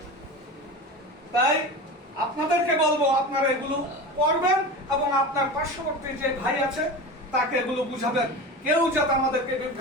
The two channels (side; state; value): both; normal; correlation 0.29